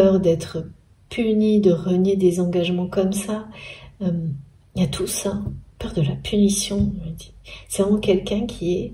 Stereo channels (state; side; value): identical; both; correlation 1.00